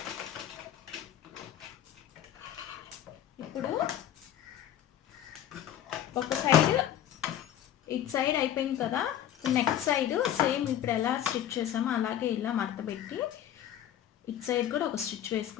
ఇప్పుడు ఒక సైడ్ ఇటు సైడ్ అయిపోయింది కదా, నెక్స్ట్ సైడ్ సేమ్ ఇప్పుడు ఎలా స్టిచ్ చేసామో అలాగే ఇలా మడత పెట్టి ఇటు సైడ్ కూడా ఒక స్టిచ్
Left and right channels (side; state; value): right; quieter; 11.0 dB